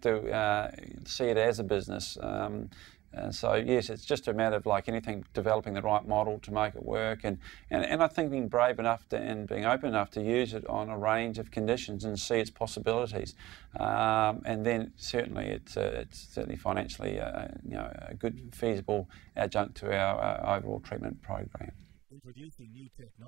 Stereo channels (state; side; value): quieter; left; 17.0 dB